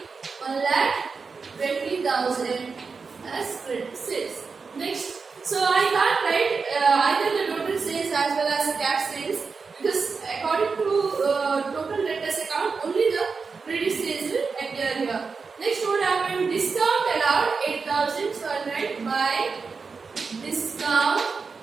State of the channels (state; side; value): quieter; left; 4.9 dB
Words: as credit sales. Next, so I can't write either the total sales as well as the cash sales, because according to total debtors account, only the credit sales will appear here. Next, what happened? Discount allowed 8,000. So I'll write by discount